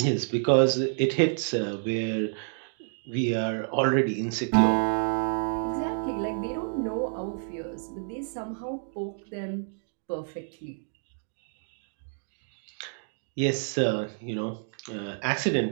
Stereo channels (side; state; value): left; silent; digital silence